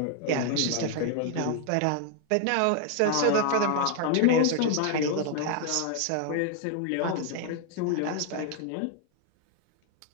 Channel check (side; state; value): both; different; correlation 0.00